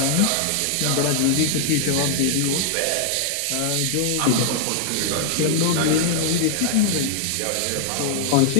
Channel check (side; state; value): both; different; correlation 0.00